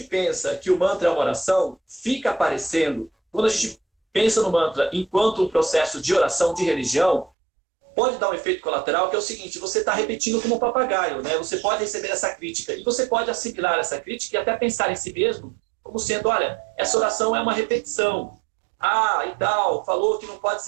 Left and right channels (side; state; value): left; drops out; at 7.3 s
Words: pensa que o mantra é uma oração, fica aparecendo, quando a gente pensa no mantra enquanto um processo de oração de religião, pode dar um efeito colateral, que é o seguinte: você está repetindo como um papagaio, né? Você pode receber essa crítica, e você pode assimilar essa crítica e até pensar em si mesmo como sendo, olha, essa oração é uma repetição. Ah, e tal, falou que não pode